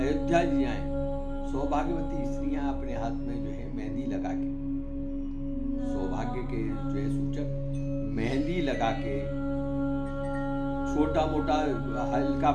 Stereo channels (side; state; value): both; identical; correlation 1.00